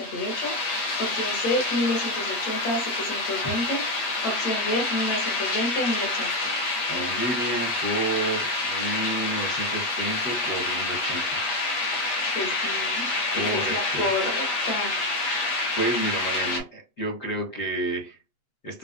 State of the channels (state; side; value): late; right; 8.2 ms